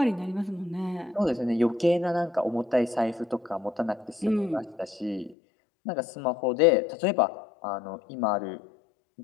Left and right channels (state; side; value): drops out; right; at 5.4 s